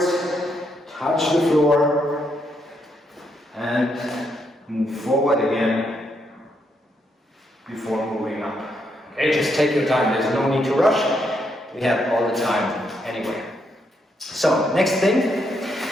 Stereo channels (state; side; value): normal; both; correlation 0.77